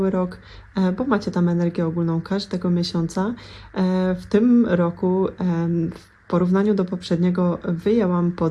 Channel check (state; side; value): identical; both; correlation 1.00